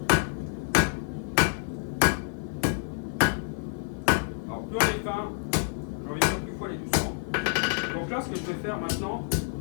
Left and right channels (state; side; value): silent; right; 57 dB below the other